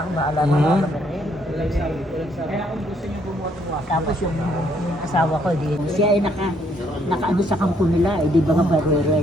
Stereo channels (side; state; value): both; normal; correlation 0.69